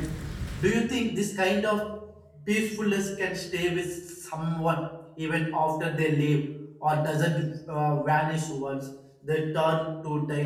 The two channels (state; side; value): identical; both; correlation 1.00